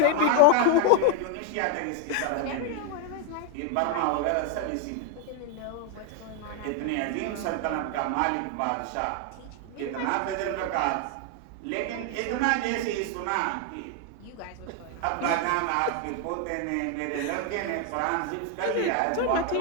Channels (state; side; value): different; both; correlation 0.01